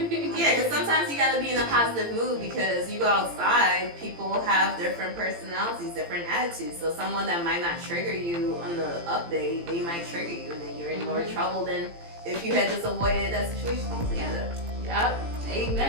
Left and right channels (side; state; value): left; late; 17 ms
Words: because sometimes you gotta be in a positive mood, because you go outside, people have different personalities, different attitudes. So someone that might not trigger you on the up day, they might trigger you, and then you're in more trouble than if you had just avoided that situation altogether. Yep.